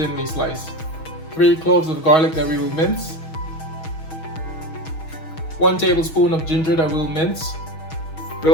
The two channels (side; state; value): right; late; 6.3 ms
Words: sliced, 3 cloves of garlic that we will mince, 1 tablespoon of ginger that we'll mince.